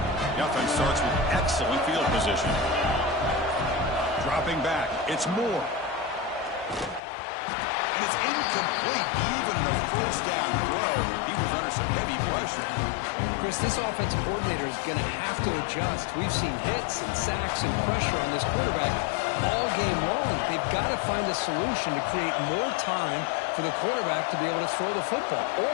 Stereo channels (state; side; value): drops out; right; at 7.0 s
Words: The offense starts with excellent field position. Dropping back. It's Moore. And it's incomplete. Even in a first down throw, he was under some heavy pressure. Chris, this offensive coordinator is going to have to adjust. We've seen hits and sacks and pressure on this quarterback all game long. They've got to find a solution to create more time for the quarterback to be able to throw the football,